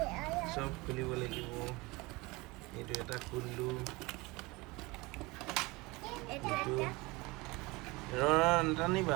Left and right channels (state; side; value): quieter; left; 23.6 dB